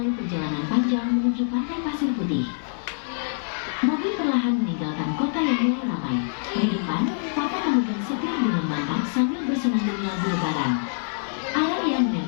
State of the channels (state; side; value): silent; right; digital silence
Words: perjalanan panjang menuju pantai pasir putih. Mobil perlahan meninggalkan kota yang mulai ramai. Di depan, Papa memegang setir dengan mantap sambil bersenandung lagu lebaran. Araria